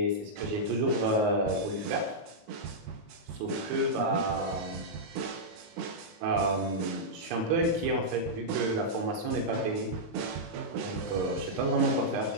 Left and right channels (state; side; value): late; left; 19 ms